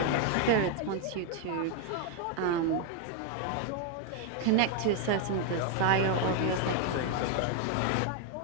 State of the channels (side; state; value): both; different; correlation 0.01